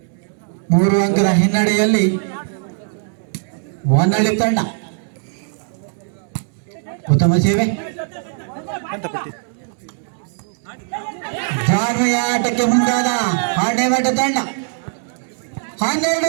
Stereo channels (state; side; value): silent; left; 66 dB below the other